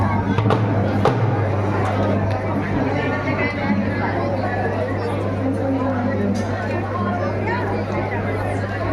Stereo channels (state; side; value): identical; both; correlation 1.00